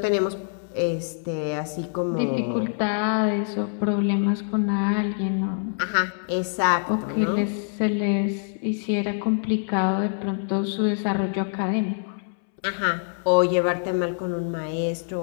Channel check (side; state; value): right; silent; 62 dB below the other